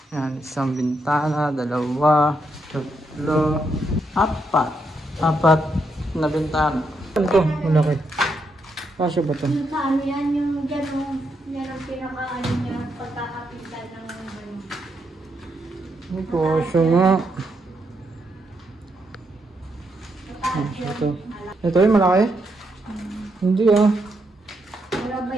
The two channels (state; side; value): normal; both; correlation 0.80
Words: Yan, isang bintana, dalawa, tatlo, apat na bintana. Ano to? Malaki. Kasya ba to? Yung sa ano yan, yung dyan, yan ang pinaka-ano niya, pagkakapitan ng ano. Ay, kasya nga. Ito yung malaki? Hindi ah. Wala ba